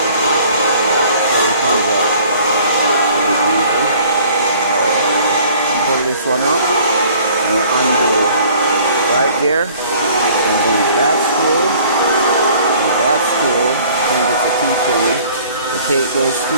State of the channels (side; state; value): both; inverted; correlation -0.53